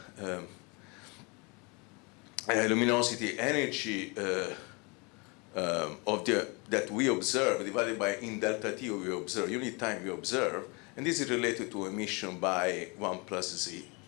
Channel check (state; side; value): quieter; right; 29.8 dB